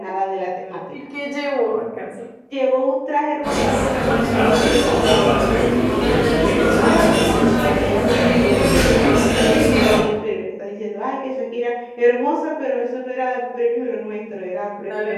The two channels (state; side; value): identical; both; correlation 1.00